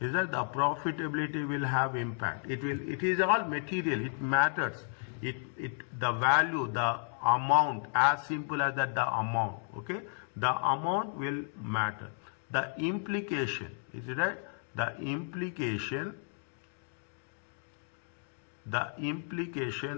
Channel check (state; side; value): silent; right; 56 dB below the other